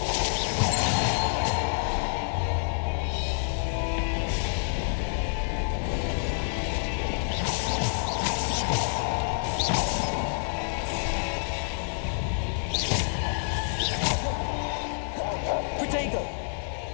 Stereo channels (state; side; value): silent; right; digital silence